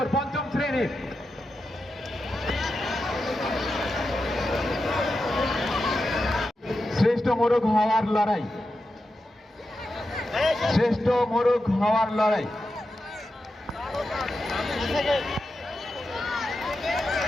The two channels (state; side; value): normal; both; correlation 0.89